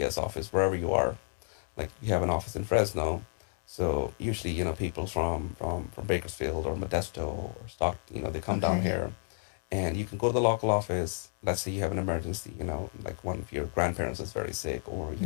office wherever you are. Like, we have an office in Fresno, so usually people from Bakersfield or Modesto or Stockton, they come down Okay. here, and you can go to the local office. Let's say you have an emergency, like one of your grandparents is very sick, or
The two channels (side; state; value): right; silent; digital silence